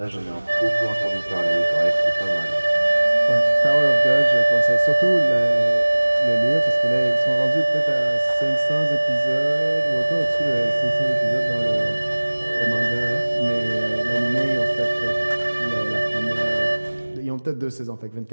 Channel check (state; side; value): inverted; both; correlation -1.00